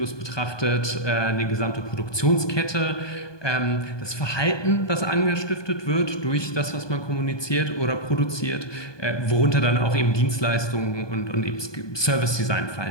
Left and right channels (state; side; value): late; right; 1.2 ms